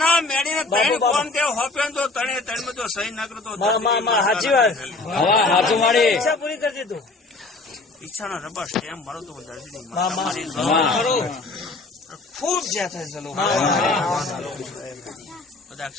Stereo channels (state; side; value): quieter; right; 3.5 dB